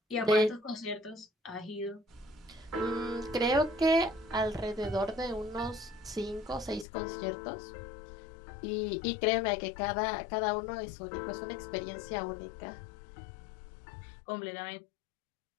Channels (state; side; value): drops out; right; at 6.9 s